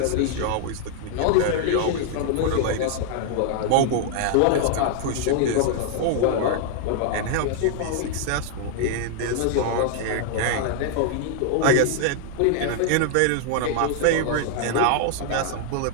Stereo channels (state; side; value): different; both; correlation -0.01